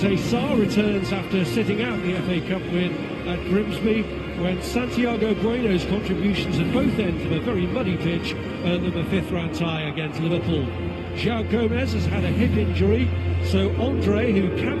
Sarr returns after sitting out the FA Cup win at Grimsby, when Santiago Bueno's contributions at both ends of a very muddy pitch earned them a 5th round tie against Liverpool. João Gomez has had a hip injury, so Andre, who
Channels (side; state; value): both; identical; correlation 1.00